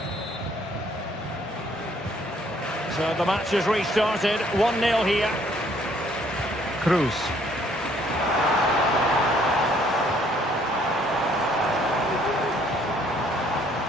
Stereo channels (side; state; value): both; normal; correlation 0.63